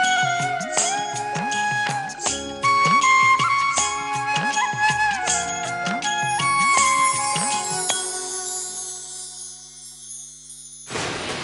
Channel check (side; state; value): both; identical; correlation 1.00